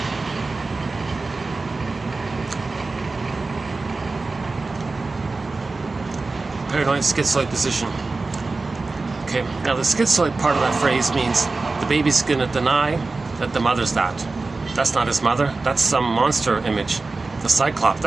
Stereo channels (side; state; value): left; quieter; 3.7 dB